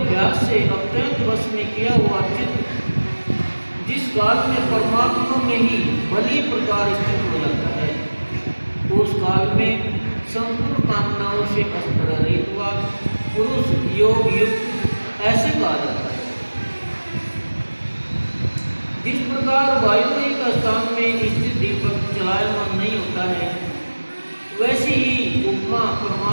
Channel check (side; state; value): both; inverted; correlation -1.00